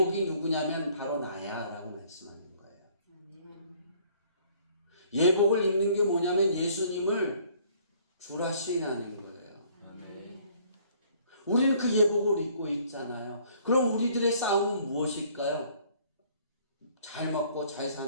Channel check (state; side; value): inverted; both; correlation -0.58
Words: 누구냐면 바로 나야 라고 말씀하는 거예요. 예복을 입는 게 뭐냐면 예수님을 주라 시인하는 거예요. 우리는 그 예복을 입고 있잖아요. 그럼 우리들의 싸움은 무엇일까요? 잘 먹고 잘